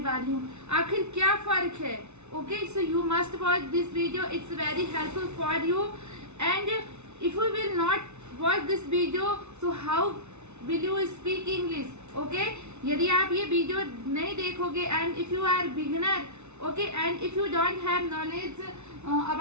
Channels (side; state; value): left; late; 0.82 ms